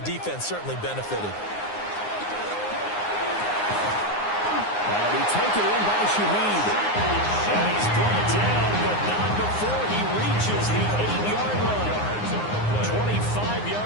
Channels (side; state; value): right; late; 9.6 ms